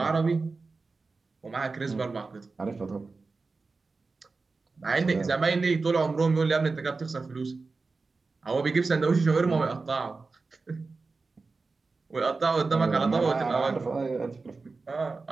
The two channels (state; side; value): quieter; left; 4.0 dB